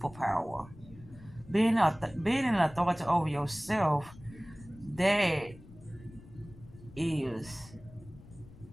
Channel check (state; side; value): noise; left; rumble, 20 dB below the sound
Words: Being an authority over yourself, that is